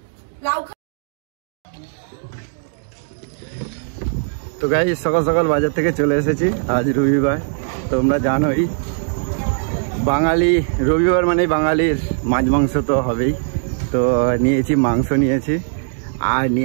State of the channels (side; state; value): left; silent; digital silence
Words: লাউ। তো গাইস সকাল সকাল বাজার থেকে চলে এসেছি, আজ রবিবার। তোমরা জানোই বাঙালি রবিবার মানে বাঙালির মাছ মাংস তো হবেই। তো নিয়েছি মাংস, নিয়েছি আর